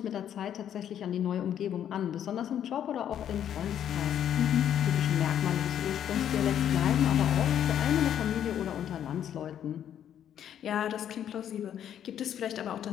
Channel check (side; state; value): right; quieter; 9.9 dB